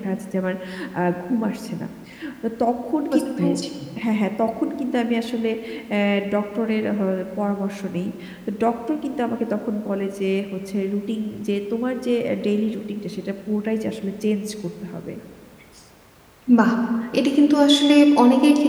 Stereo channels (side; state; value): both; identical; correlation 1.00